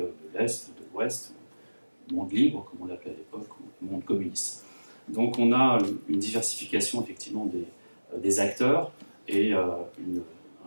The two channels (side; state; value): both; inverted; correlation -1.00